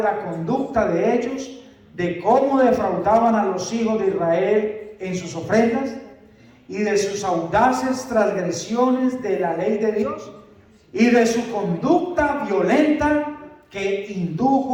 la conducta de ellos, de cómo defraudaban a los hijos de Israel en sus ofrendas y de sus audaces transgresiones de la ley de Dios y de su conducta violenta que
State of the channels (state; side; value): identical; both; correlation 1.00